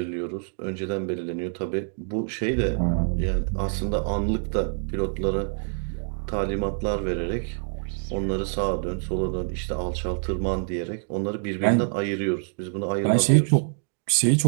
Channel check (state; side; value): silent; left; 61 dB below the other